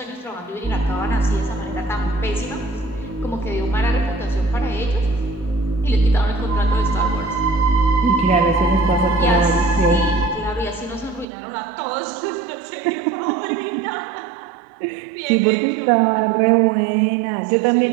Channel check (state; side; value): drops out; left; at 11.2 s